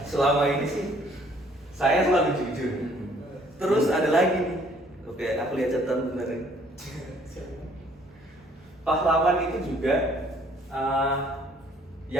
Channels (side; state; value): both; normal; correlation 0.60